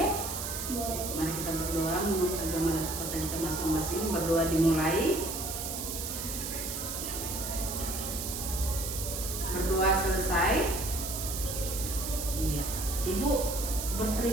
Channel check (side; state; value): right; noise; hiss, 5 dB below the sound